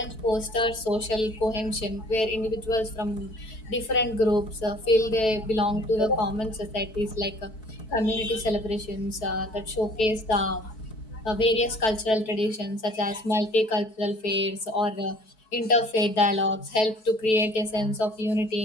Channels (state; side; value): late; right; 4.6 ms